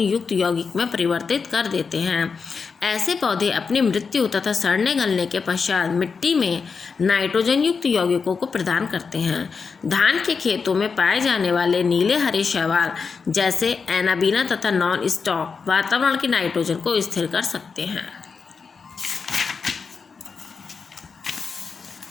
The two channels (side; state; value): right; quieter; 5.3 dB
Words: यौगिक में परिवर्तित कर देते हैं। ऐसे पौधे अपनी मृत्यु तथा सड़ने गलने के पश्चात मिट्टी में नाइट्रोजन युक्त यौगिकों को प्रदान करते हैं। धान के खेतों में पाए जाने वाले नीले हरे शैवाल जैसे एनाबीना तथा नॉन स्टॉक वातावरण की नाइट्रोजन को स्थिर कर सकते हैं।